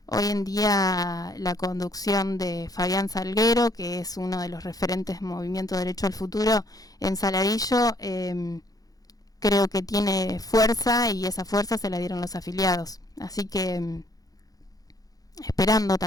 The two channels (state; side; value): late; right; 0.18 ms